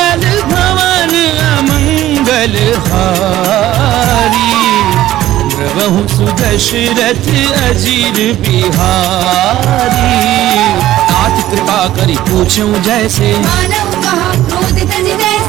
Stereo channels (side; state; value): left; quieter; 14.2 dB